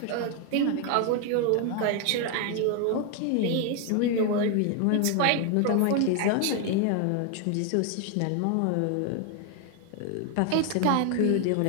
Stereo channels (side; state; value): both; different; correlation 0.00